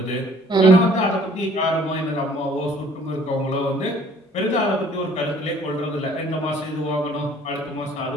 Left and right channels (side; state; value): both; normal; correlation 0.56